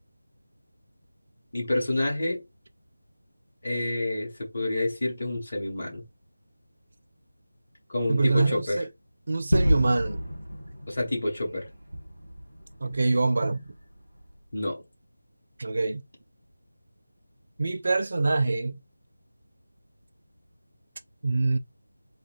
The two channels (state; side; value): inverted; both; correlation -0.95